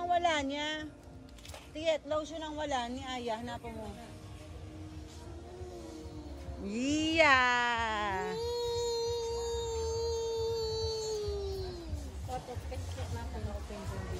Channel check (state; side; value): identical; both; correlation 1.00